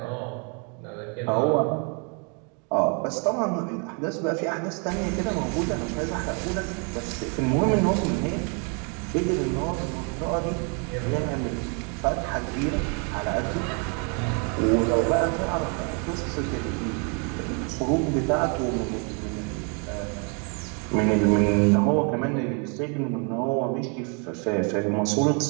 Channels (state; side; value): quieter; left; 36.5 dB